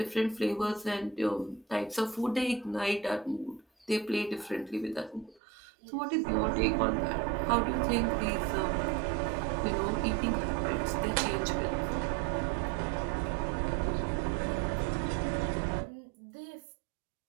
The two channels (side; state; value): left; drops out; at 5.4 s